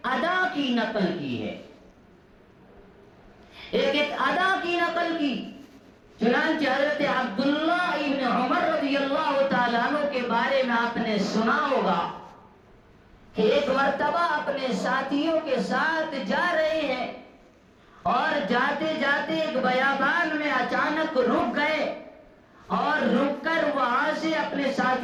ادا کی نقل کی ہے، ایک ایک ادا کی نقل کی۔ چنانچہ حضرت عبداللہ ابن عمر رضی اللہ تعالیٰ عنہ کے بارے میں آپ نے سنا ہوگا کہ ایک مرتبہ اپنے ساتھیوں کے ساتھ جا رہے ہیں اور جاتے جاتے ایک بیابان میں اچانک رک گئے، اور رک کر وہاں سے اپنے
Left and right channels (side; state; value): both; identical; correlation 1.00